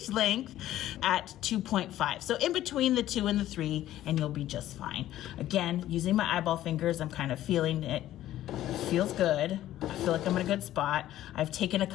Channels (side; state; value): right; quieter; 13.5 dB